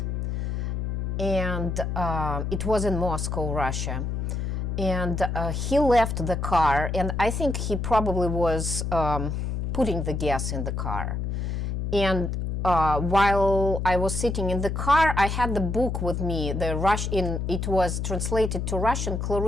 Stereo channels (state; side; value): noise; left; hum, 2 dB below the sound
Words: and it was in Moscow, Russia. And he left the car, and I think he probably was putting the gas in the car. And while I was sitting in the car, I had the book with me, it was translated to Russian,